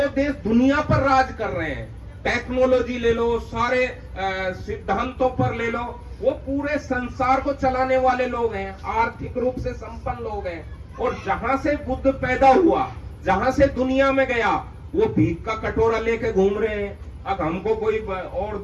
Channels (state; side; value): identical; both; correlation 1.00